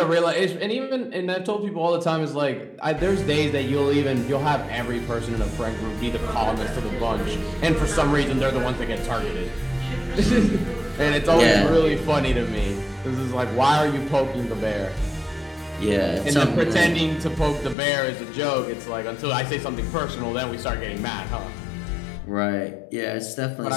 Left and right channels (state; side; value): drops out; right; at 17.8 s